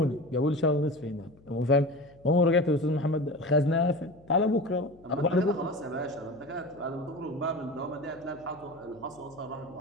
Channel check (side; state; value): left; noise; hum, 26 dB below the sound